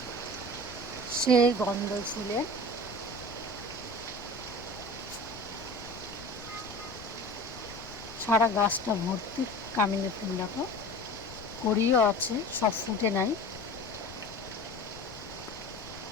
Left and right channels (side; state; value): left; noise; rumble, 16 dB below the sound